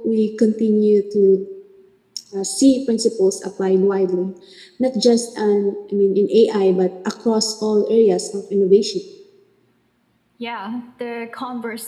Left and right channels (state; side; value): identical; both; correlation 1.00